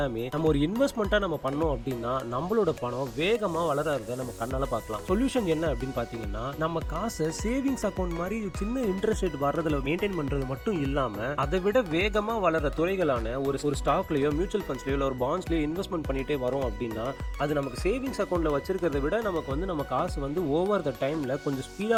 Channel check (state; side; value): identical; both; correlation 1.00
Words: நம்ம ஒரு இன்வெஸ்ட்மெண்ட்டாக நம்ம பண்ணோம் அப்படின்னா நம்மளோட பணம் வேகமாக வளர்றத நம்ம கண்ணால் பார்க்கலாம். சொல்யூஷன் என்ன அப்படின்னு பார்த்தீங்கன்னா, நம்ம காசை சேவிங்ஸ் அக்கௌண்ட் மாதிரி சின்ன இன்ட்ரெஸ்ட் ரேட் வர்றதுல மெயின்டைன் பண்றது மட்டும் இல்லாம அதை விட வேகமா வளர துறைகளான ஒரு ஸ்டாக்லயோ மியூச்சுவல் ஃபண்ட்ஸ்லயோ ஒரு பாண்ட்ஸ்லயோ இன்வெஸ்ட்மெண்ட் பண்ணிட்டே வரோம் அப்படின்னா அது நமக்கு சேவிங்ஸ் அக்கௌண்ட்ல வச்சிருக்கிறத விட நமக்கு நம்ம காசு ஓவர் த டைம்ல கொஞ்சம்